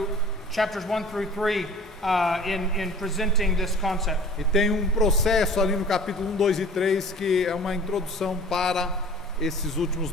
chapters 1 through 3 in presenting this concept. E tem um processo ali no capítulo 1, 2 e 3 que é uma introdução para esses últimos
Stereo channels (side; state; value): both; normal; correlation 0.45